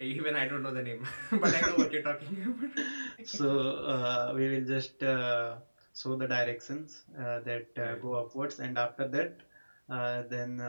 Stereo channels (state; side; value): inverted; both; correlation -1.00